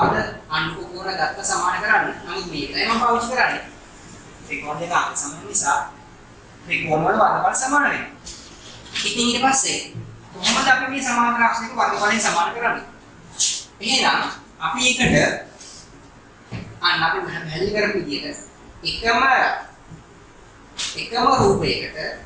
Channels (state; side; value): identical; both; correlation 1.00